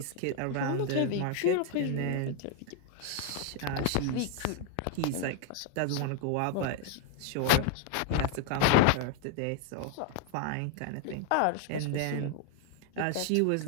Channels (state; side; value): different; both; correlation 0.01